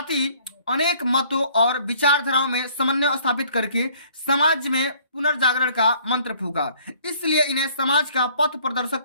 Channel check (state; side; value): inverted; both; correlation -0.58